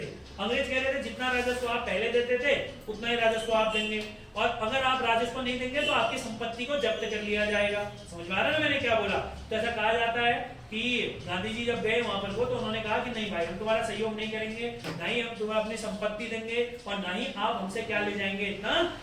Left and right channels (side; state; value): both; identical; correlation 1.00